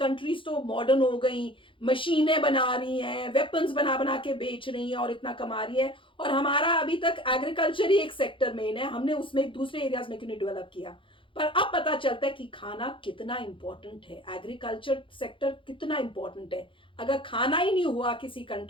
तो मॉडर्न हो गई, मशीनें बना रही हैं, वेपन्स बना बना के बेच रही हैं और इतना कमा रही है, और हमारा अभी तक एग्रीकल्चर ही एक सेक्टर मेन है, हमने उसमें दूसरे एरियाज में क्यों नहीं डेवलप किया। पर अब पता चलता है कि खाना कितना इंपॉर्टेंट है, एग्रीकल्चर सेक्टर कितना इंपॉर्टेंट है। अगर खाना ही नहीं हुआ किसी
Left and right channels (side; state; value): right; late; 0.25 ms